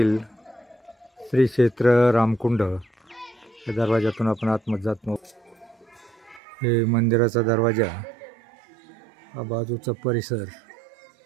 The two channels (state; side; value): drops out; left; at 6.4 s